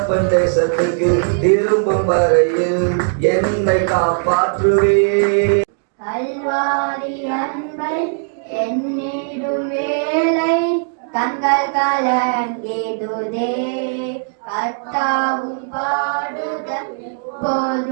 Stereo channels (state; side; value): silent; left; digital silence